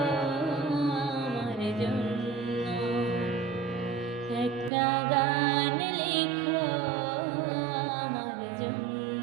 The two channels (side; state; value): left; drops out; at 4.7 s